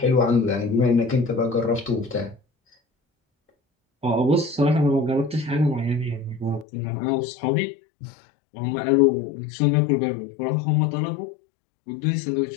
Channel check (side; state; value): right; drops out; at 6.7 s